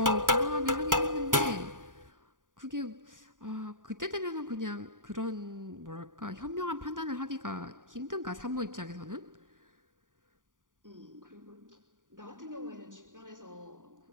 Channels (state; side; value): late; left; 0.88 ms